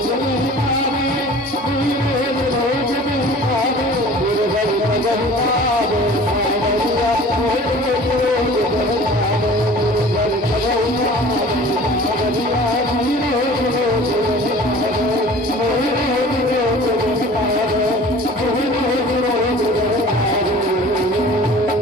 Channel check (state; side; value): normal; both; correlation 0.45